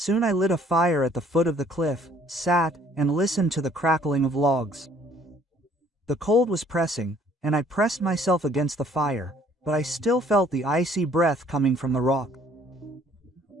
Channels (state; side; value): normal; both; correlation 0.60